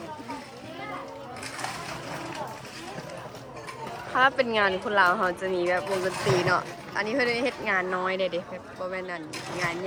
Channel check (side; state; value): both; identical; correlation 1.00